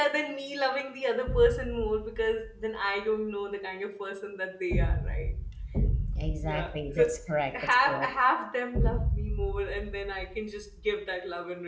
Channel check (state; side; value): identical; both; correlation 1.00